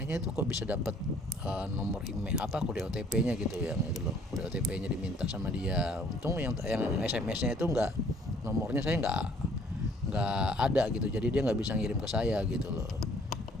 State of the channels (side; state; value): both; normal; correlation 0.59